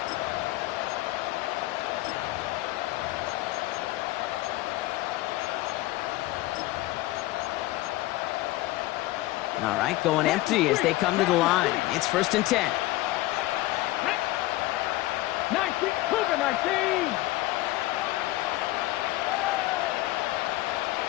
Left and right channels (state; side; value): quieter; right; 17.7 dB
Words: All right, going empty as they come to the line. It's 1st and 10. 19.